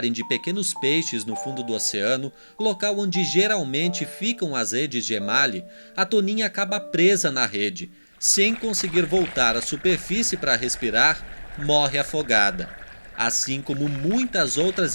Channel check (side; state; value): both; inverted; correlation -1.00